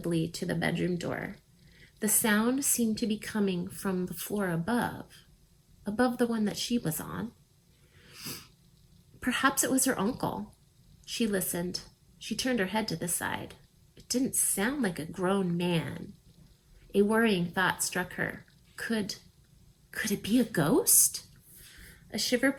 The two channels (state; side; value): identical; both; correlation 1.00